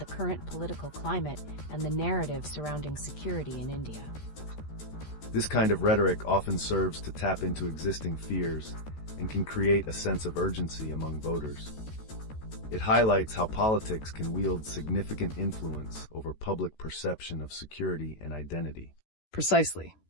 current political climate and the narrative surrounding security in India? This kind of rhetoric often serves to tap into existing fears and can create a sense of urgency among voters. It highlights how politics can wield significant influence over public perception of security and identity. Precisely.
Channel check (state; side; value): late; right; 13 ms